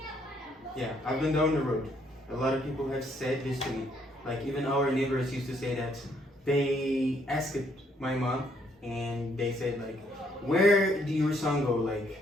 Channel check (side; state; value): both; normal; correlation 0.69